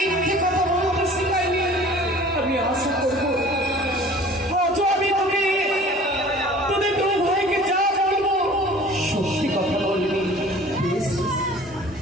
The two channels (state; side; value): normal; both; correlation 0.47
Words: কথা বলতে শিখাইনি। আমি আশা করবো আজও আমি তোদের দু ভাইকে যা বলবো সত্যি কথা বলবি।